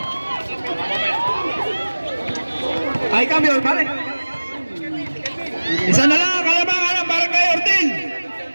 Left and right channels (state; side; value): inverted; both; correlation -1.00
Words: Ay, cambio, pare. Isa na lang, kalabangan ng Barangay Ortil.